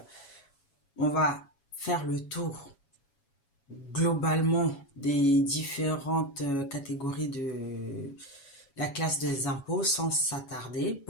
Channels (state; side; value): late; right; 7.2 ms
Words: on va faire le tour globalement des différentes catégories de la classe des impôts sans s'attarder.